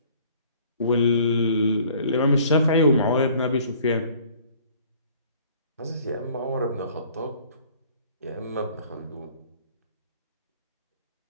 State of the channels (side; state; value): both; inverted; correlation -0.55